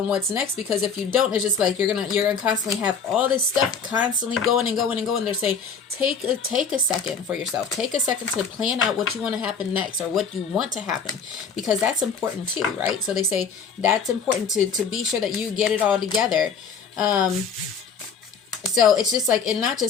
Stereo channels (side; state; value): right; quieter; 5.8 dB